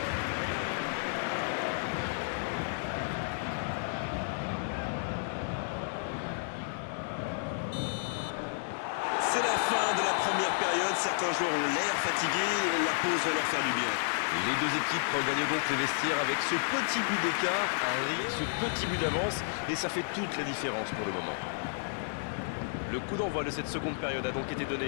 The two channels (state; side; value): silent; right; digital silence